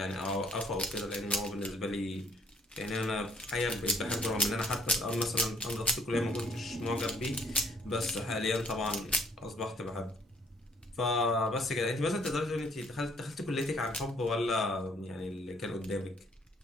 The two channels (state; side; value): normal; both; correlation 0.63